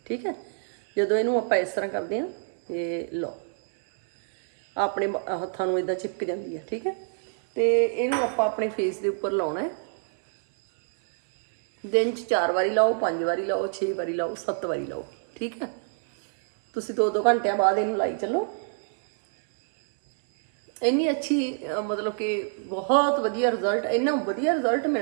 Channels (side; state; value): left; silent; 58 dB below the other